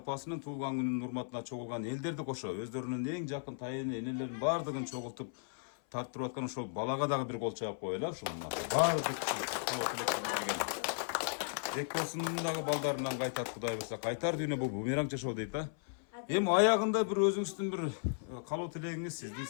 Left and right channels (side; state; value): right; silent; 54 dB below the other